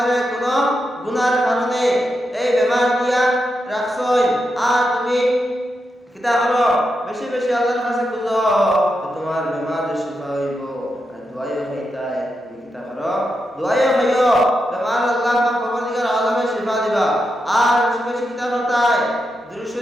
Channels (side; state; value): both; normal; correlation 0.86